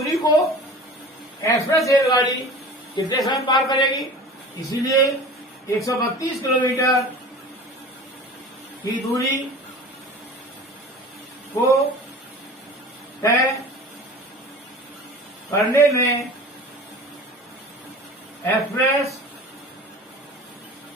को एक्सप्रेस रेलगाड़ी कितने समय पार करेगी, इसीलिए 132 किलोमीटर की दूरी को तय करने में एक्सप्रेस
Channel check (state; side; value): normal; both; correlation 0.39